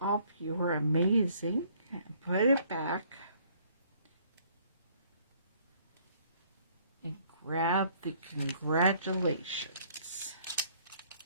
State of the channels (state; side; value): inverted; both; correlation -0.61